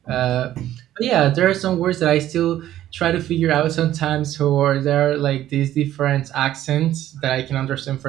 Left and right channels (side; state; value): left; quieter; 12.9 dB